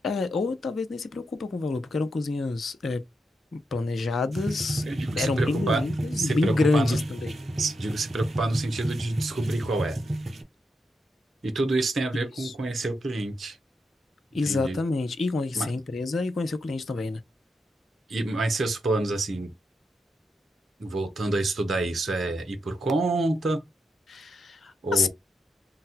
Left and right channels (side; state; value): both; normal; correlation 0.84